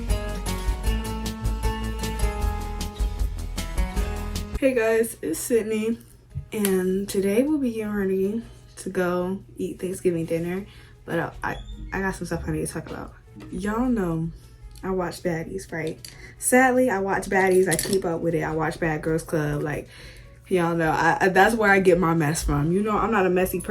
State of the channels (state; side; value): identical; both; correlation 1.00